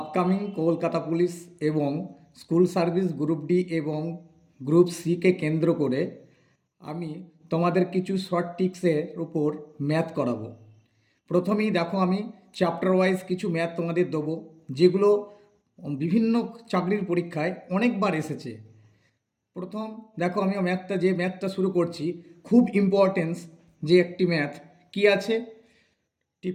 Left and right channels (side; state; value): both; identical; correlation 1.00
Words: Upcoming Kolkata police এবং school service group D এবং group সিকে কেন্দ্র করে আমি তোমাদের কিছু শর্ট টিক্সের উপর ম্যাথ করাবো। প্রথমেই দেখো, আমি চ্যাপ্টার ওয়াইজ কিছু ম্যাথ তোমাদের দেবো, যেগুলো বিভিন্ন চাকরির পরীক্ষায় অনেকবার এসেছে। প্রথম দেখো, আমি ম্যাথটা শুরু করছি। খুব ইম্পর্টেন্স যে একটি ম্যাথ কি আছে,